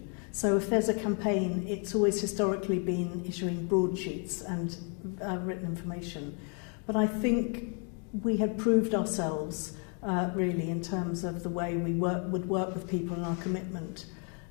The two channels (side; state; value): right; quieter; 39.0 dB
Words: So if there's a campaign, it's always historically been issuing broadsheets and written information. But I think we had proved ourselves really in terms of the way we would work with people and our commitment.